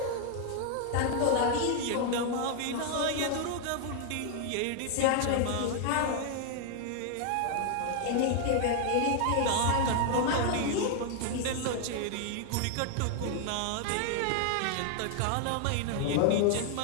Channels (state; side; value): different; both; correlation 0.00